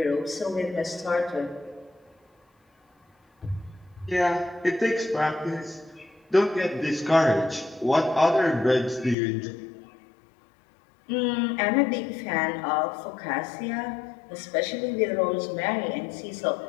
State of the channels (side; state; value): right; drops out; at 9.2 s